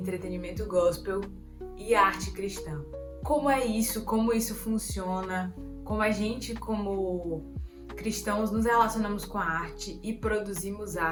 gospel e a arte cristã. Como é isso, como isso funciona, como a gente, como cristãos, nos relacionamos com a arte e produzimos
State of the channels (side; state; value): both; identical; correlation 1.00